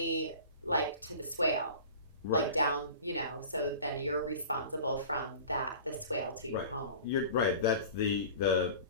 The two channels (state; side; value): inverted; both; correlation -0.40